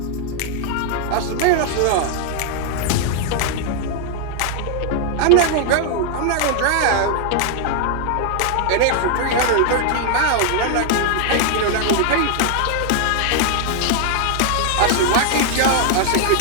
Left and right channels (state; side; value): different; both; correlation 0.00